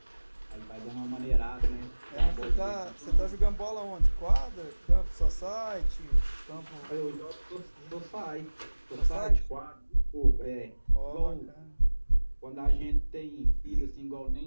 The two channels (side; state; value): both; inverted; correlation -1.00